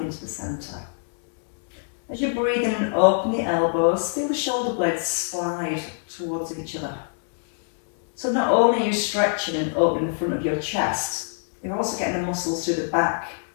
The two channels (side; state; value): right; silent; 62 dB below the other